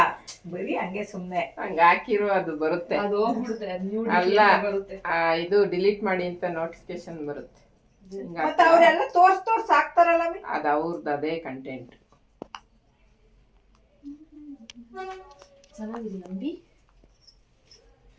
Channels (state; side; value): identical; both; correlation 1.00